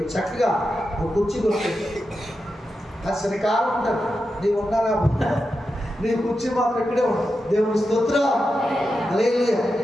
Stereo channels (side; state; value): both; normal; correlation 0.89